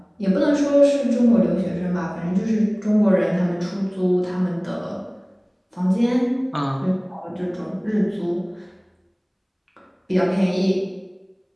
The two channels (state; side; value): identical; both; correlation 1.00